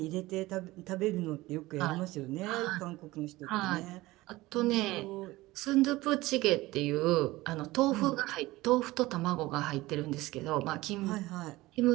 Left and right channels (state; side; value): quieter; left; 19.0 dB